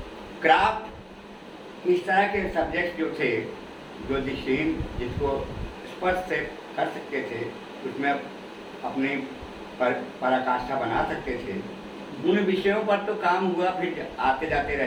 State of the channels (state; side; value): identical; both; correlation 1.00